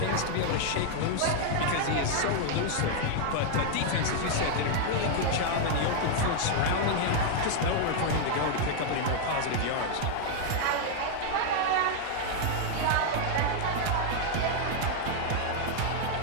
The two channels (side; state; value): both; different; correlation 0.00